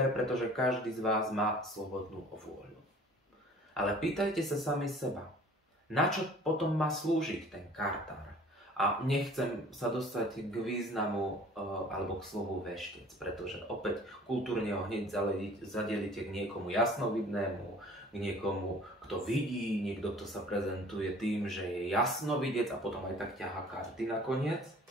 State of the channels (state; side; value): normal; both; correlation 0.49